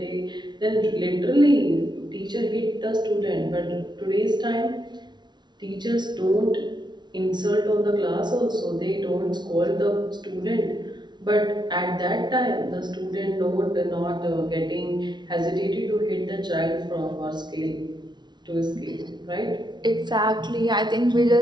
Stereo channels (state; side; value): late; left; 0.21 ms